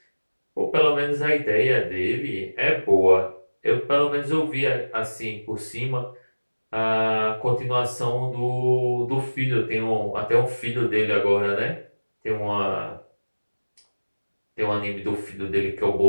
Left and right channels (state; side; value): inverted; both; correlation -1.00